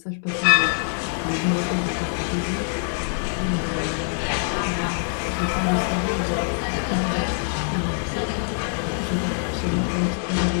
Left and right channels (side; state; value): right; silent; digital silence